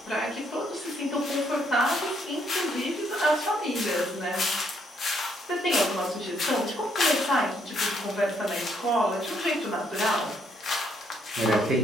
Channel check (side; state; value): both; normal; correlation 0.71